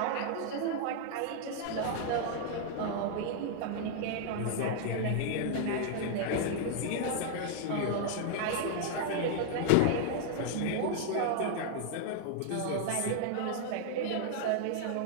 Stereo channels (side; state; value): both; different; correlation 0.00